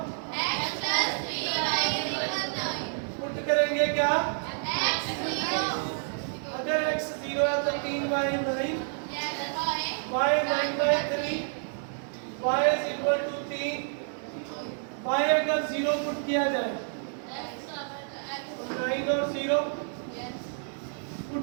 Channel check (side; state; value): left; silent; 58 dB below the other